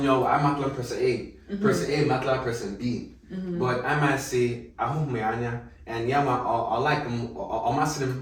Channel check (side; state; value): both; identical; correlation 1.00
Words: person A, person A matla person B, but I might say ahu meanya and yama I like them or masim